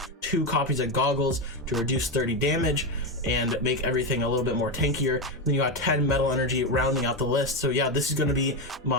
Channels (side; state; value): both; normal; correlation 0.11